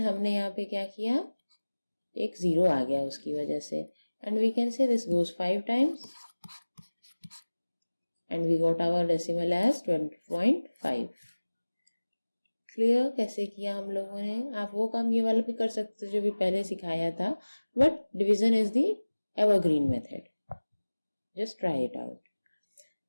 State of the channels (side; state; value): both; inverted; correlation -1.00